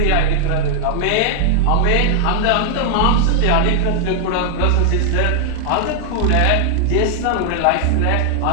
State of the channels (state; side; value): different; both; correlation 0.00